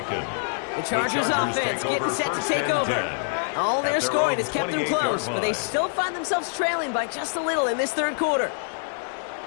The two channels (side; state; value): right; silent; 62 dB below the other